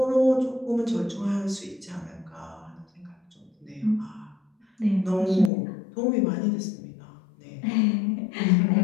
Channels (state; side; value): drops out; right; at 5.5 s